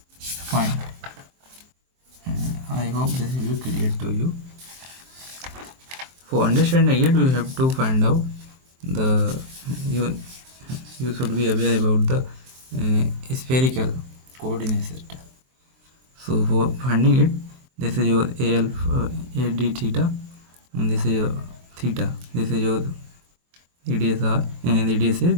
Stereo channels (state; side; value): late; left; 23 ms